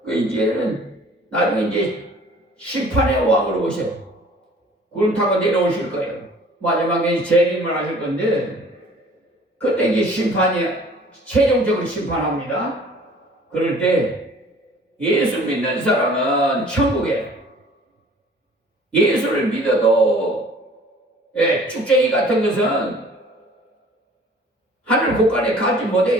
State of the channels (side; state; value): both; normal; correlation 0.51